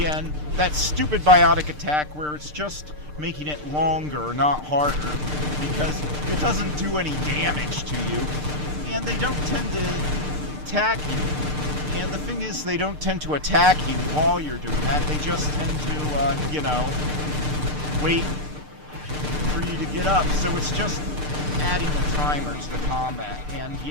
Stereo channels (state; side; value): late; left; 6.7 ms